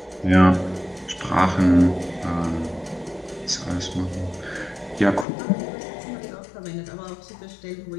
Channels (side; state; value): right; drops out; at 5.2 s